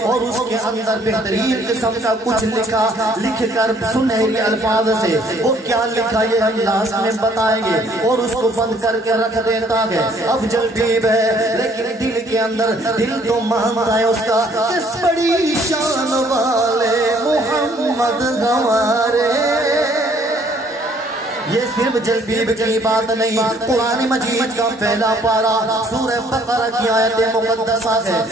اور اس کے اندر بہترین قسم کا کچھ لکھ کر سنہری الفاظ سے، وہ کیا لکھا یہ ہم لاسٹ میں بتائیں گے، اور اس کو بند کر کے رکھ دیتا ہے۔ اب جلبیب ہے لیکن دل کے اندر دل تو مانتا ہے اس کا، کس بڑی شان والے محمد ہمارے۔ یہ صرف جلبیب کی بات نہیں، قرآن مجید کا پہلا پارہ سورہ بقرہ کی آیت مقدسہ ہے۔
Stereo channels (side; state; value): both; normal; correlation 0.61